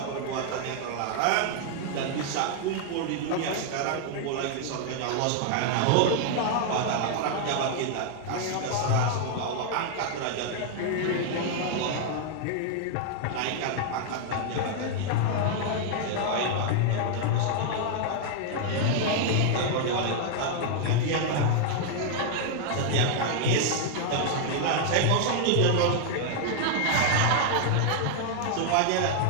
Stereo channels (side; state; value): both; different; correlation 0.00